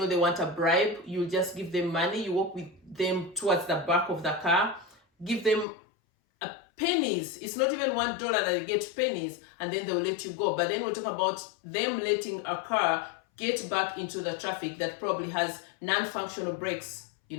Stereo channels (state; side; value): drops out; right; at 5.7 s